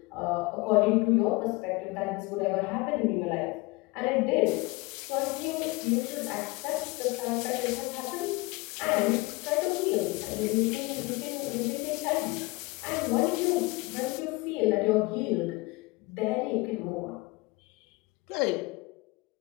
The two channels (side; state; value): right; quieter; 24.0 dB